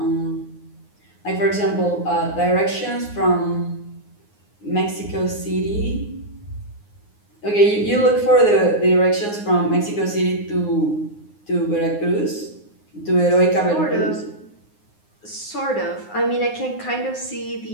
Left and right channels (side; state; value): right; late; 9.6 ms